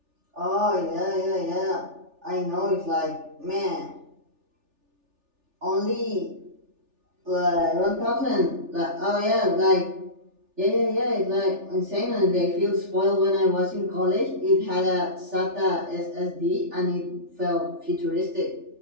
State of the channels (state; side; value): late; left; 3.4 ms